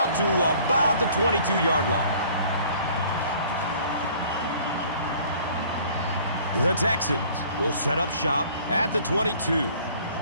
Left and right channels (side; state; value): both; inverted; correlation -0.54